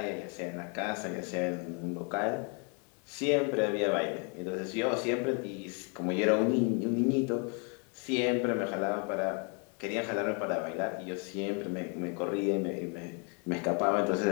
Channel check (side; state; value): right; quieter; 36.8 dB